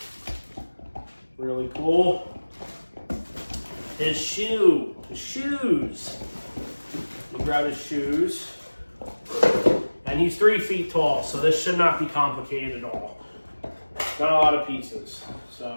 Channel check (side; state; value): both; inverted; correlation -1.00